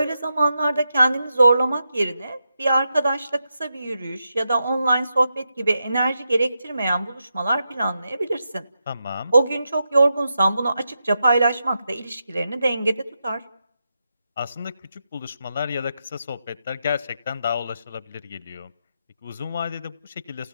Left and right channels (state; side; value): inverted; both; correlation -0.87